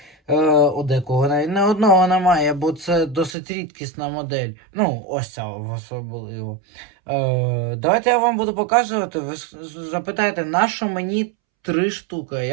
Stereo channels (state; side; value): drops out; left; at 3.4 s